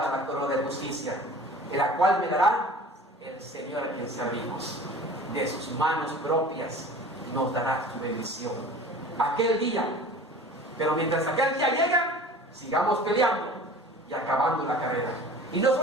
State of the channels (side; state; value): both; normal; correlation 0.42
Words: la corona de justicia, en la cual me dará el Señor a quien servimos. De sus manos propias nos dará su bendición aquel día. Pero mientras aquel día llega, sigamos peleando y acabando la carrera. Y no